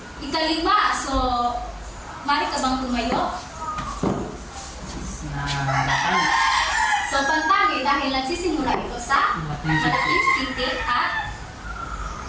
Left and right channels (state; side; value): identical; both; correlation 1.00